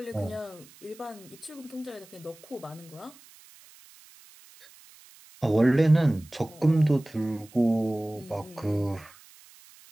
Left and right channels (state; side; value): noise; right; hiss, 24 dB below the sound